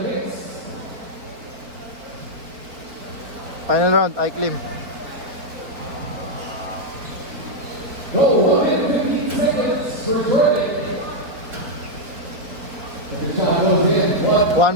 Final round, Iklim. Go, 1 minute 15 seconds for Jordan. If the shot goes in,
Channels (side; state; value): left; late; 3.9 ms